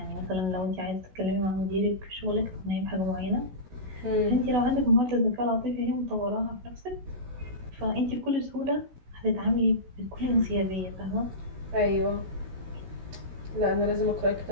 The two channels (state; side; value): late; left; 16 ms